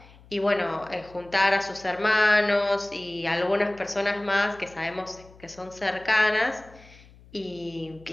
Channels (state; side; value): noise; left; hum, 24 dB below the sound